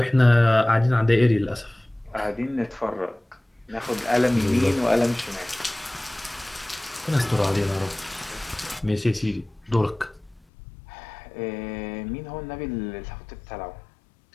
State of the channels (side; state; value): right; drops out; at 10.4 s